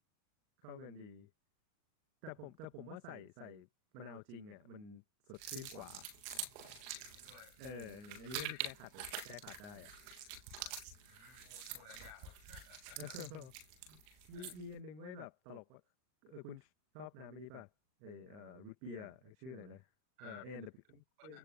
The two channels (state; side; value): late; left; 39 ms